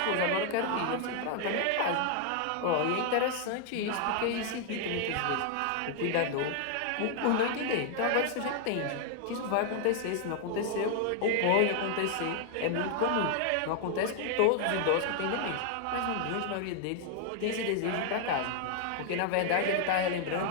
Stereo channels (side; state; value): both; different; correlation 0.00